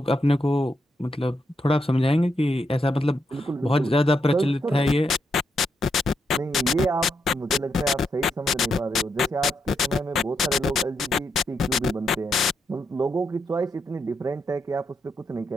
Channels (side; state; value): both; normal; correlation 0.81